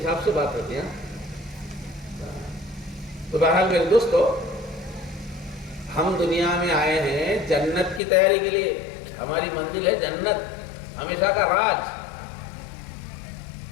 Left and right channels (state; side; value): drops out; right; at 8.0 s